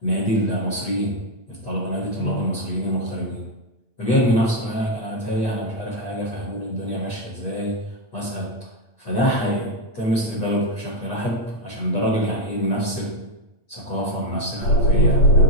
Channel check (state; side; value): late; right; 8.8 ms